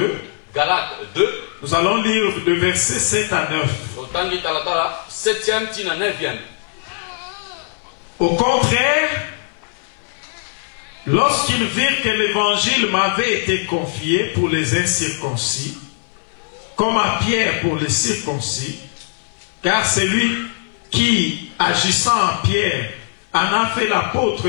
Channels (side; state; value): right; silent; 60 dB below the other